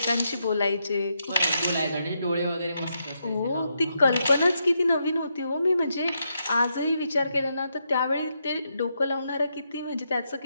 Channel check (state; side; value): inverted; both; correlation -0.81